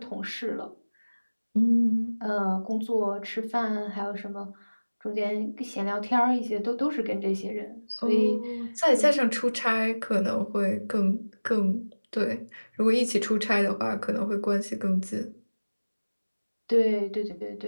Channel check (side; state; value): both; inverted; correlation -1.00